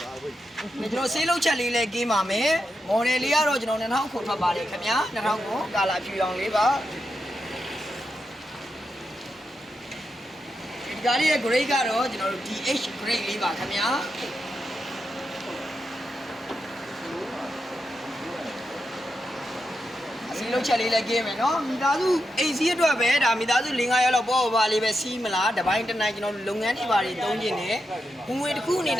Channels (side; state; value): both; normal; correlation 0.86